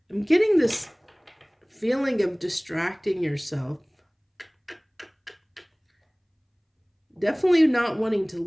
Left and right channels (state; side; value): identical; both; correlation 1.00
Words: I'm getting this feeling of distracting yourself. Definitely not wanting to